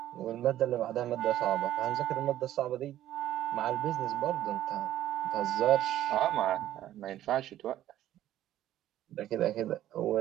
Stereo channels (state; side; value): quieter; left; 12.9 dB